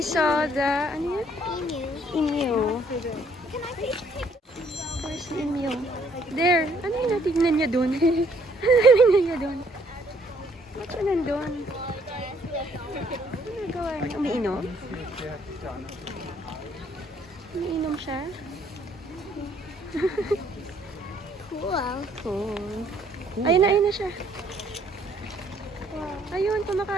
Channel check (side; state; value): both; normal; correlation 0.65